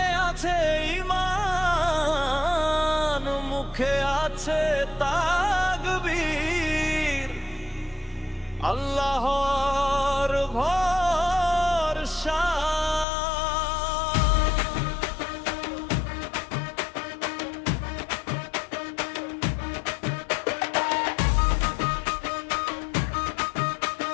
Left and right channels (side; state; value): right; drops out; at 13.1 s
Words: আছে ঈমান, মুখে আছে তাকবীর, আল্লাহর ভরসা।